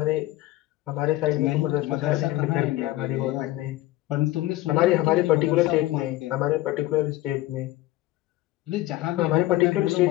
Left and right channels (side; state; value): right; quieter; 16.7 dB